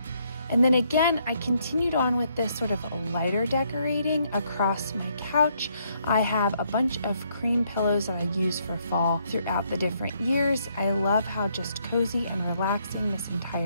And then again, I continued on with this sort of lighter decorating across my couch. I have a bunch of cream pillows that I use for fall throughout the different years. I love how just cozy and relaxing this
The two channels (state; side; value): inverted; both; correlation -0.72